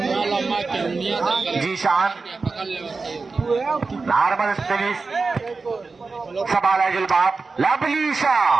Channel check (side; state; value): left; quieter; 4.2 dB